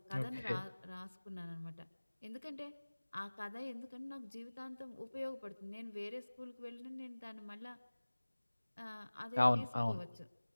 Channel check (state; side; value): inverted; both; correlation -1.00